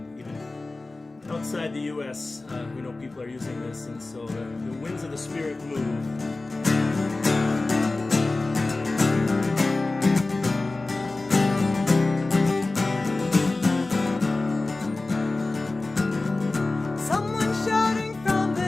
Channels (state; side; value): quieter; right; 3.2 dB